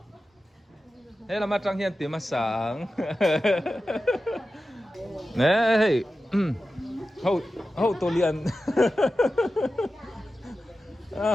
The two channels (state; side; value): normal; both; correlation 0.93